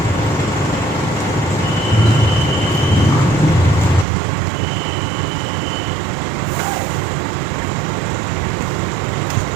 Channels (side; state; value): left; drops out; at 4.0 s